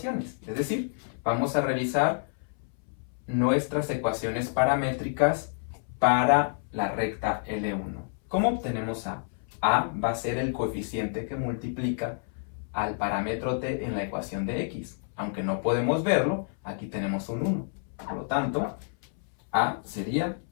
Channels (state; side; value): silent; right; 59 dB below the other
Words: Es decir, vamos a revisar nuestras ecuaciones paramétricas para la recta L1. ¿Cómo obtenemos A? A va a ser el coeficiente que multiplica al parámetro t en la ecuación de x. Aunque no podemos verlo, aquí tenemos un 1. Por lo tanto, A sería